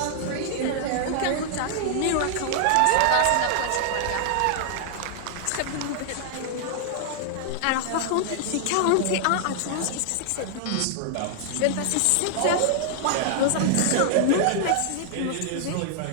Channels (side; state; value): both; different; correlation -0.01